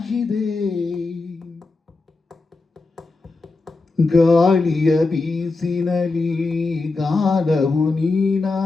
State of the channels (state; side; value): quieter; right; 3.6 dB